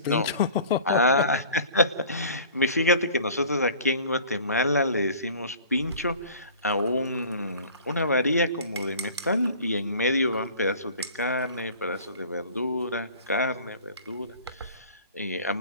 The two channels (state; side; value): inverted; both; correlation -0.45